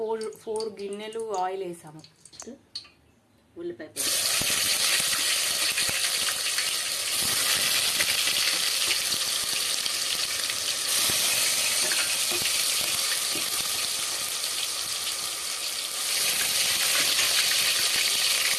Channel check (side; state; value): both; identical; correlation 1.00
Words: గిన్నెలు ఆయిల్ వేసాము. ఉల్లిపాయ